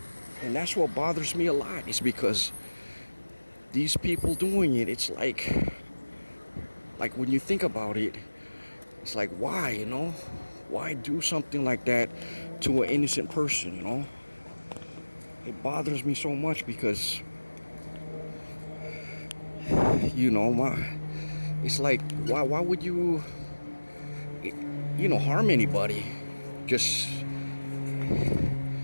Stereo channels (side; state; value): both; inverted; correlation -1.00